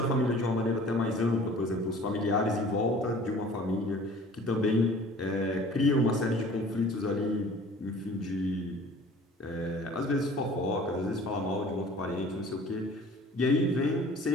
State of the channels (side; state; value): both; normal; correlation 0.48